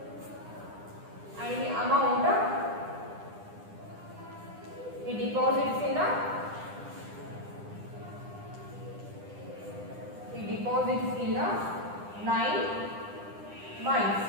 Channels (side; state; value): left; late; 9.9 ms